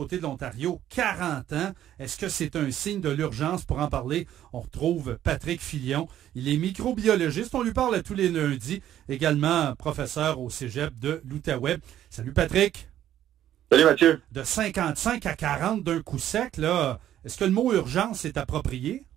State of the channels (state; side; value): quieter; left; 11.7 dB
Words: de l'Ontario, 40 ans. Est-ce que c'est un signe de l'urgence? Pour en parler, on retrouve Patrick Filion. Il est microbiologiste. On lui parle à tous les lundis. Également professeur au cégep de l'Outaouais. Salut Patrick. Salut Mathieu. De 55 à 40 d'un coup sec, là, est-ce que le mot urgence est approprié?